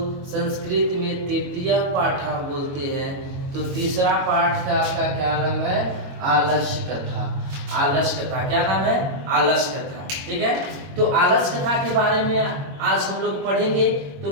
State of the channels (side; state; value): left; late; 22 ms